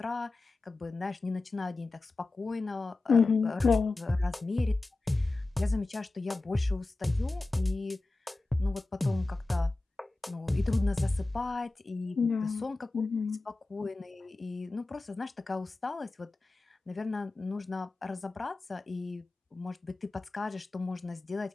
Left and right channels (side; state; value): right; quieter; 3.1 dB